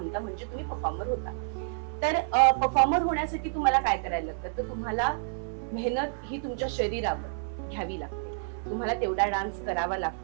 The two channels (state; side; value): silent; left; 58 dB below the other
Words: म्हणजे तुम्ही परफॉर्मर होता. तर परफॉर्मर होण्यासाठी तुम्हाला काय करायला लागतं, तर तुम्हाला मेहनत ही तुमच्या शरीरावर घ्यावी लागते. तुम्हाला तेवढा डान्स करावा